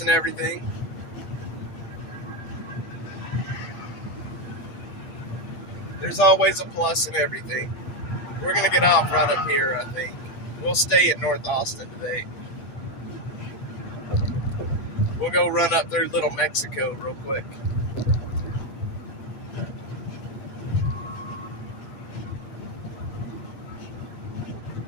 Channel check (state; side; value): late; right; 8.4 ms